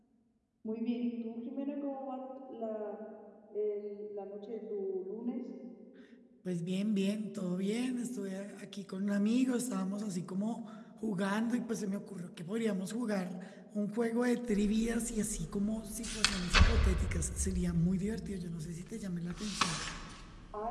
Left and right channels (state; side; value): identical; both; correlation 1.00